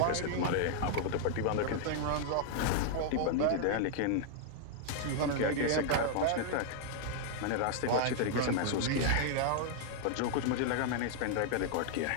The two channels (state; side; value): different; both; correlation -0.01